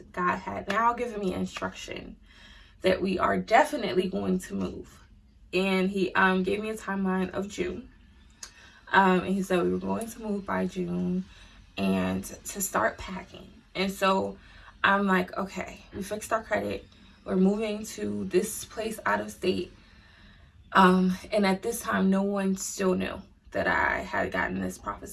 God had now given me instruction that we are definitely going to move. And he gave me a timeline of June. And he said we were going to move by June and to start packing. And so I'm like, okay, we fixed our credit. We're moving to this place out of state. And at this time, no one still knew that I had gotten this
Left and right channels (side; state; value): both; identical; correlation 1.00